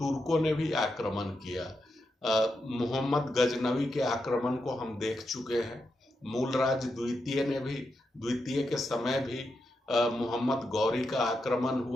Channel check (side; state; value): both; normal; correlation 0.85